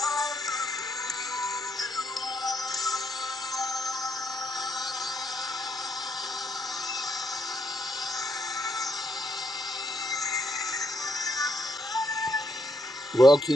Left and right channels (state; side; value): normal; both; correlation 0.75